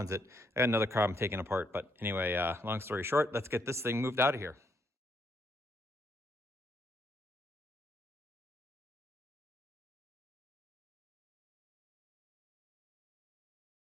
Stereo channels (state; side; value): normal; both; correlation 0.74